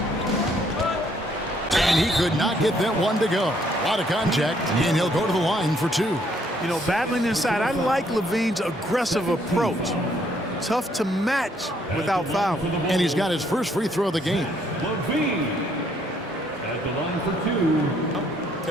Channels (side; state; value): both; normal; correlation 0.68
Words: And he could not get that one to go. A lot of contact, and he'll go to the line for 2. You know, battling inside, I like Levine's aggressive approach. Tough to match without fouling. And he's got his first free throw of the game. Levine at the line for 2.